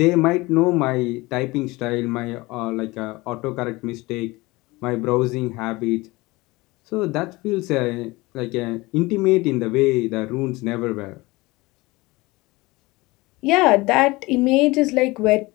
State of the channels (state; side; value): quieter; right; 21.9 dB